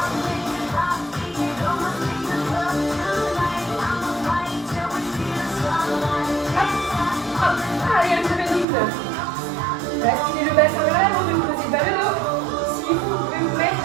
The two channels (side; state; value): left; drops out; at 8.7 s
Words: Hop, hop. Allez, un petit peu de rythme. Basculez le bassin vers l'avant, ne posez pas le dos. Si vous pouvez vous